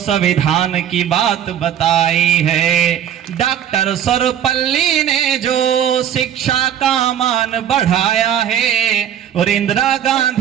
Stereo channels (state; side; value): quieter; left; 9.9 dB